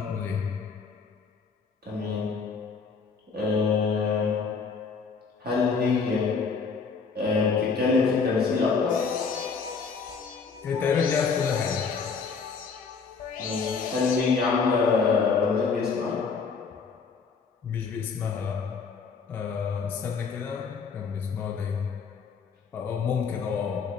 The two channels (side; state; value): right; quieter; 5.3 dB